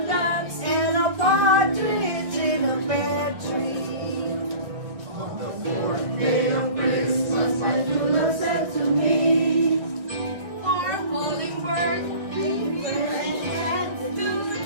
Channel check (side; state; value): left; late; 1.6 ms